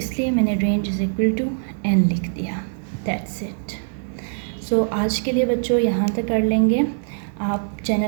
मैंने range is equal to n लिख दिया। That's it. सो आज के लिए बच्चों यहाँ तक कर लेंगे। आप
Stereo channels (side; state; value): left; silent; digital silence